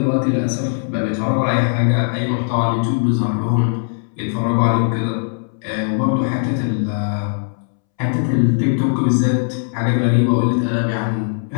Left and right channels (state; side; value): silent; right; 67 dB below the other